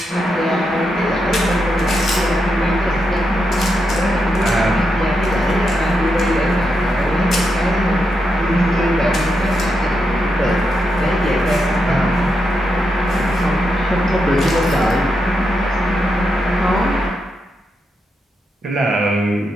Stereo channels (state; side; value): normal; both; correlation 0.84